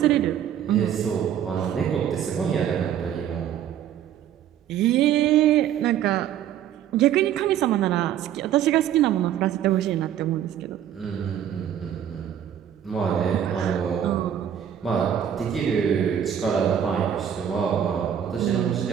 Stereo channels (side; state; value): left; quieter; 9.9 dB